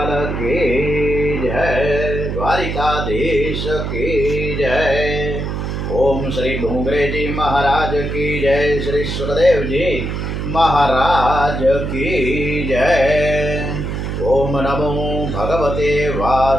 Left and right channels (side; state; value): right; noise; hum, 3 dB below the sound